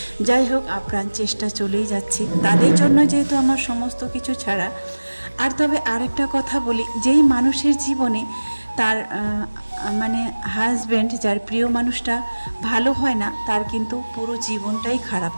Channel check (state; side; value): inverted; both; correlation -1.00